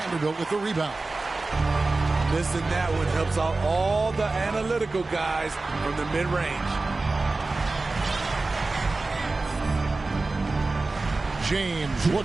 with the rebound. Missing that one helps out all the analytical guys from the mid-range. James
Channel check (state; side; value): quieter; left; 3.4 dB